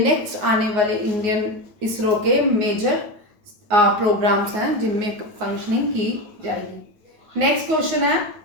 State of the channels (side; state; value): left; late; 9.5 ms